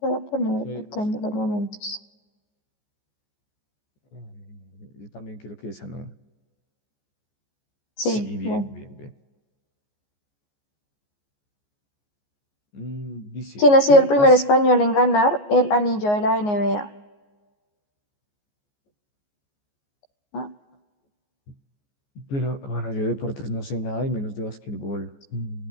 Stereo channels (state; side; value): late; right; 14 ms